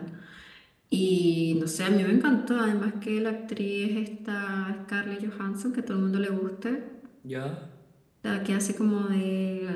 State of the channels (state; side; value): identical; both; correlation 1.00